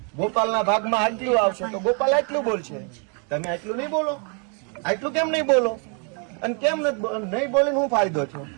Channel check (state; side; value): quieter; left; 38.5 dB